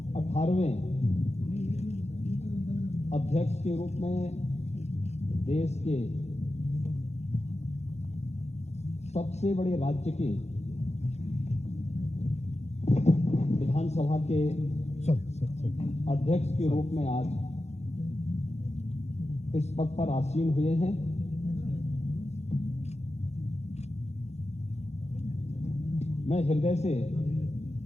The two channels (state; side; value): late; right; 0.32 ms